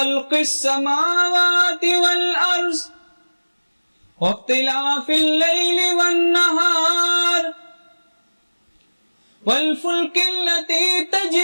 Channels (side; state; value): both; inverted; correlation -1.00